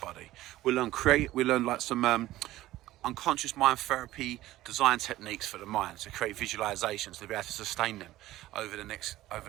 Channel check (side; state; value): left; quieter; 15.7 dB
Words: body. We'll learn like some unconscious mind therapy design techniques for the mind to create visualizations to be able to sustain them over the next